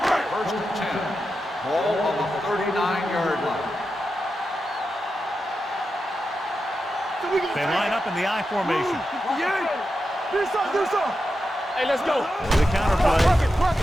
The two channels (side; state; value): both; normal; correlation 0.89